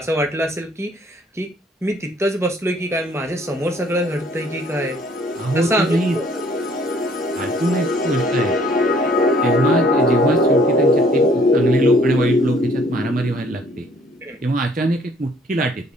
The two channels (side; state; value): both; normal; correlation 0.60